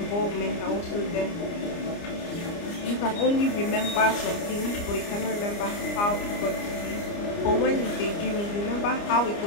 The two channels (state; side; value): late; right; 29 ms